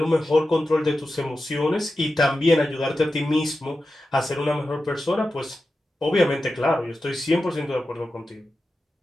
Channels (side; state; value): both; normal; correlation 0.92